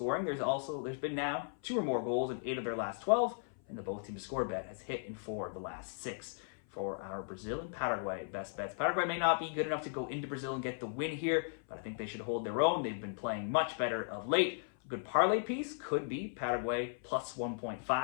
there's been now 2 or more goals in 8 of their last 12, and the both team to score bet has hit in 4 of the last 6. For our Brazil and Paraguay best bets, Paraguay may not be good enough to go into Brazil and get the win here, but I think they should hold their own. They've been playing much better of late. A good parlay piece could be Paraguay plus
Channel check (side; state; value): right; silent; 53 dB below the other